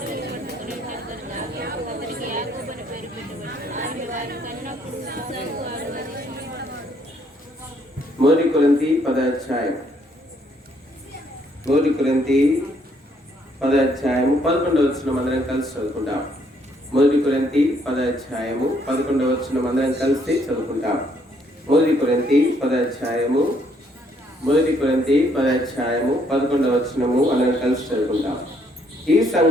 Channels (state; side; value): normal; both; correlation 0.69